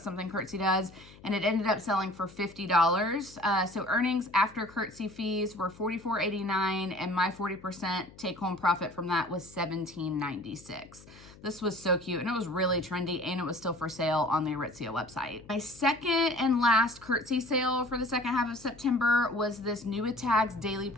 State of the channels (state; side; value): noise; left; hum, 22 dB below the sound